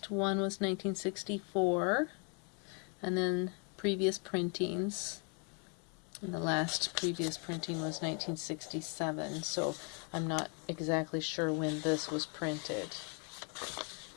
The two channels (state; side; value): quieter; right; 37.9 dB